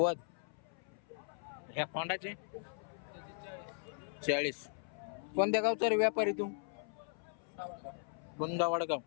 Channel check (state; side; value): silent; right; 52 dB below the other